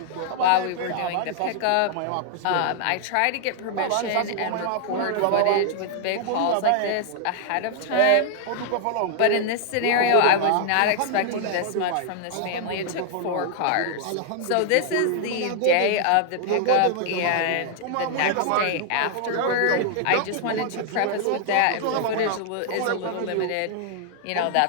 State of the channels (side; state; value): both; different; correlation -0.01